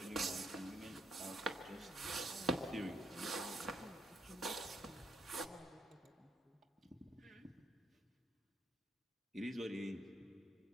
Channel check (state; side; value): normal; both; correlation 0.74